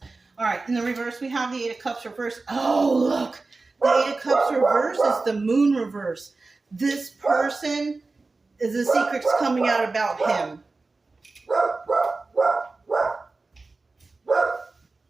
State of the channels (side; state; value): left; quieter; 3.6 dB